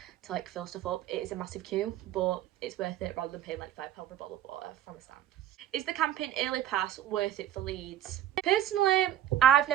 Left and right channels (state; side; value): quieter; left; 11.5 dB